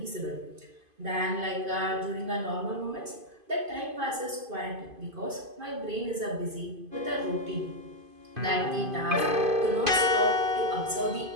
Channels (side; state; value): left; late; 2.5 ms